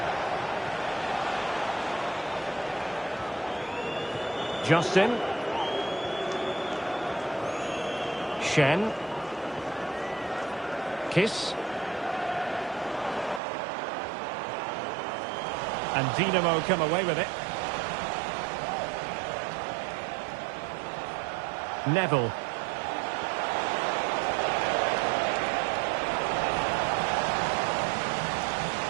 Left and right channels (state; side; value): drops out; left; at 13.4 s